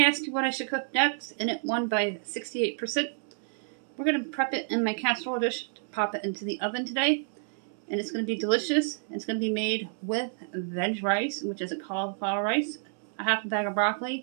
asked you what I should cook next and it won by 68%. We're going to prep it in my casserole dish to pop it into the oven today. And it's going to be delicious. It's going to be made with veg rice, which is a cauliflower rice, a half a bag of broccoli.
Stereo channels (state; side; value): silent; left; 58 dB below the other